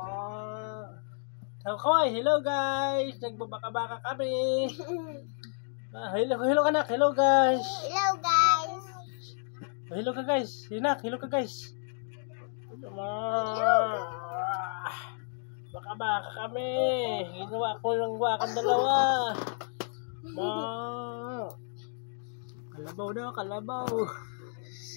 Kaway, hello guys. Nagbabaka-baka kami. Hello anak, hello guys. Hello guys. Hello ka guys. Hinak, hello ka guys. Baka-baka kami. Ginawa ko lang wakang dalawa. Kalabaw daw, kalabaw.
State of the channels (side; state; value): right; silent; digital silence